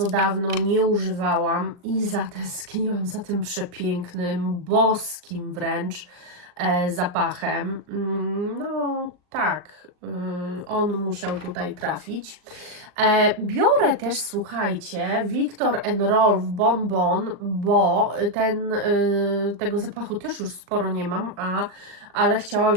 dawno nie używałam i zatęskniłam za tym przepięknym, boskim wręcz zapachem. No tak, on musiał tutaj trafić. Biorę też, słuchajcie, Viktor & Rolf Bon Bon, bo tego zapachu też już sporo nie mam, ale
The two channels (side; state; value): left; late; 39 ms